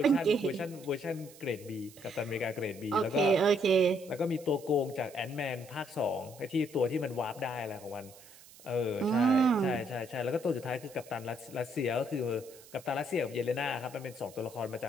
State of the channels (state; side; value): noise; right; hiss, 21 dB below the sound